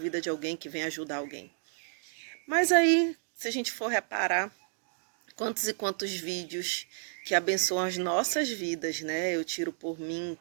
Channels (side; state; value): left; silent; digital silence